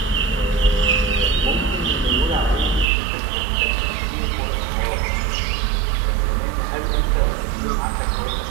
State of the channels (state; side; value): drops out; left; at 2.9 s